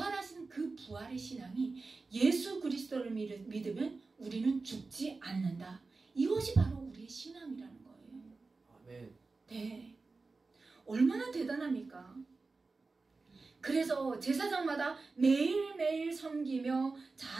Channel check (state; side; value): quieter; left; 3.9 dB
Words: 그 부활의 신앙이, 예수 그리스도를 믿으면 우리는 죽지 않는다. 이것이 바로 우리의 신앙이라는 거예요. 아멘. 네. 얼마나 대단합니까? 그래서 제사장마다 매일매일 섬기며